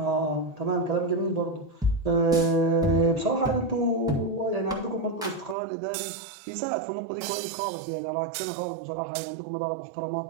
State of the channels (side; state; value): left; drops out; at 5.6 s